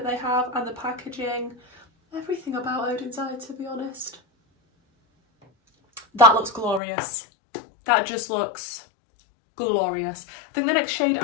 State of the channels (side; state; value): right; drops out; at 6.8 s